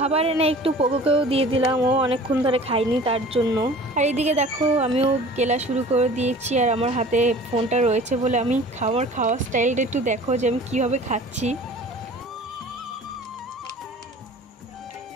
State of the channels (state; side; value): normal; both; correlation 0.45